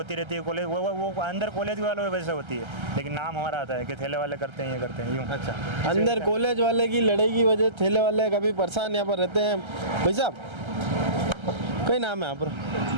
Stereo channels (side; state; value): left; late; 1.3 ms